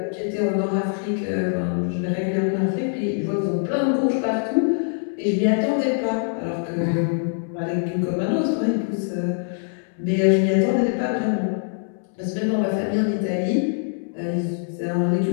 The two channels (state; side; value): silent; right; 63 dB below the other